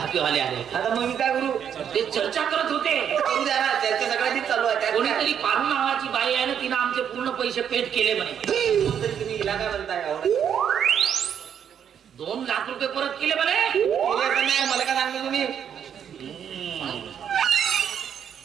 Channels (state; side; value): quieter; left; 8.5 dB